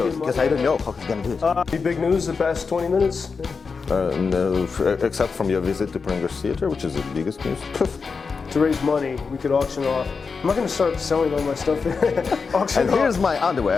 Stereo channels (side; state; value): right; quieter; 5.0 dB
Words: because I don't know how he's gonna do it. Any big news the past 20 minutes? No, except from your visit to Pringles Theater, which is the biggest news. To raise money, we could auction off. I'm not going to start selling all my stuff. And here's my